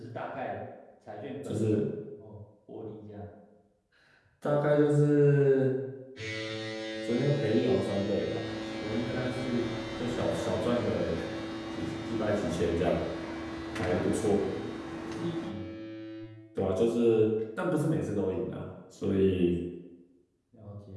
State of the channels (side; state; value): both; identical; correlation 1.00